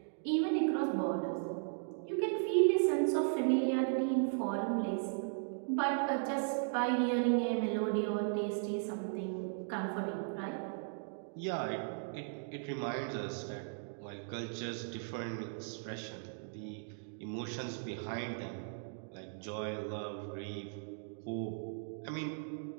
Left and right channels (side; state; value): left; silent; digital silence